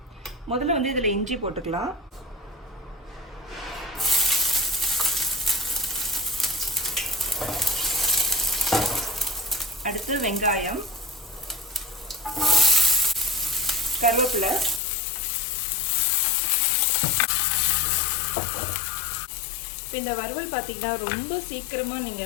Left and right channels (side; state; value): right; drops out; at 14.8 s